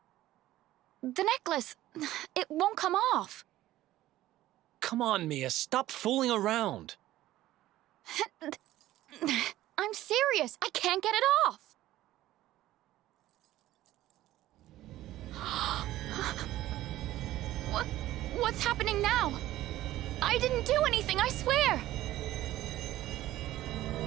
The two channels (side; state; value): left; quieter; 14.9 dB